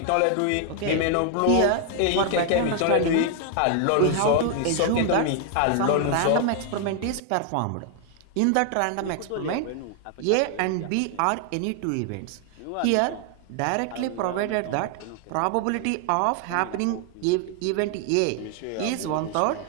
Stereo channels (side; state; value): both; different; correlation 0.00